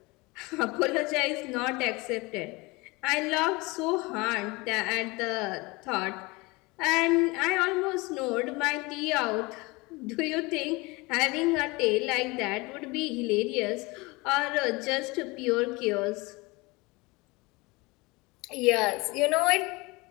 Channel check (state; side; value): quieter; right; 24.5 dB